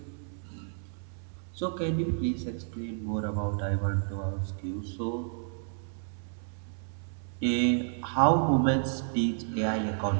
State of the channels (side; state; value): left; silent; 57 dB below the other